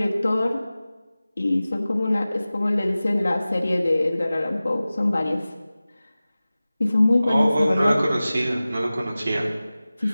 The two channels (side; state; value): both; inverted; correlation -0.97